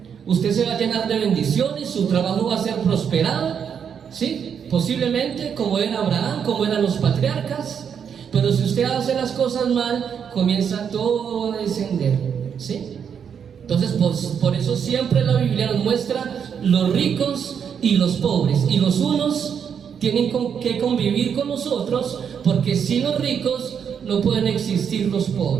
Usted se va a llenar de bendiciones, su trabajo va a ser prosperado, ¿sí? Posiblemente como era Abraham, como eran los patriarcas. Pero si usted hace las cosas mal, comienza todo a descender, ¿sí? Entonces, por eso siempre la Biblia nos muestra los ricos y los pobres, y los unos tienen que convivir con nosotros, porque sin los ricos no pueden existir los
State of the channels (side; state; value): left; quieter; 7.5 dB